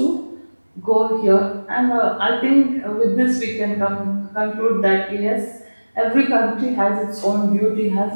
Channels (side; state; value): both; inverted; correlation -1.00